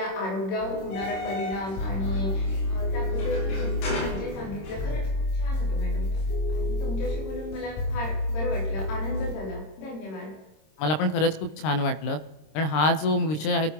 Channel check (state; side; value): late; right; 26 ms